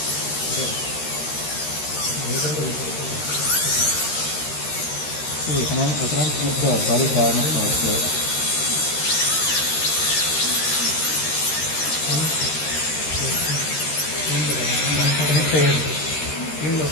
so you cannot keep the body garment also.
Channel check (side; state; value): right; late; 13 ms